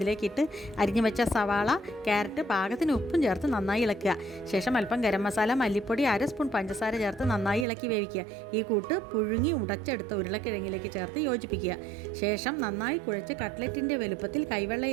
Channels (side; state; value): left; drops out; at 7.7 s